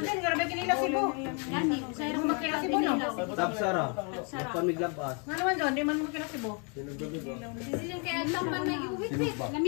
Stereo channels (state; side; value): quieter; right; 36.8 dB